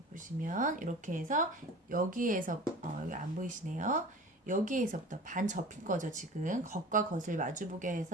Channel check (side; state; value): both; normal; correlation 0.39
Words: 보시면 이렇게 해서 여기에서 여기 안 보이시네요. 여기에서부터 반 접힌 거죠. 지금 겉과 겉을 마주보게